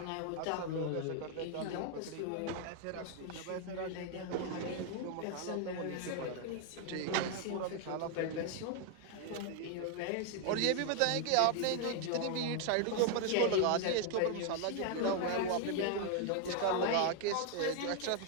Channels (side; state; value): both; different; correlation 0.00